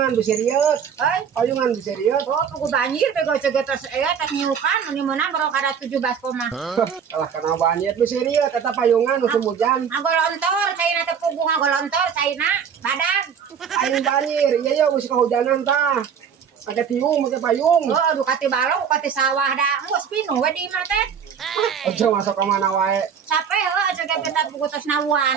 bisa riet. Payungan bisa riet. Oh, pugu banjir bego cegetos tas nyukan ini menang baru kada 17 koma. Kalah kena banjir bisa riet kata payungan musim hujan. Ngagolontor caina teh pugu ngagolontor caina badag. Aing banjir, iya ya musim kehujanan tah. Ada tiung pakai payung. Oh, aduh kati balong kati sawah dah. Engko spino we di imah teh. Aja masuk ke mana wae. Sape heuh aja kita pugu tos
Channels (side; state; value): left; quieter; 7.3 dB